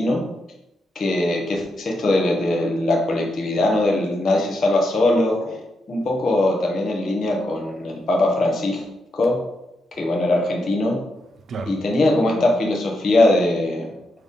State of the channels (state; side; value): normal; both; correlation 0.84